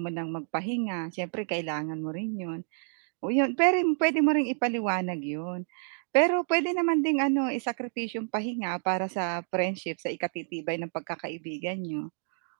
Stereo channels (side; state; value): left; silent; 58 dB below the other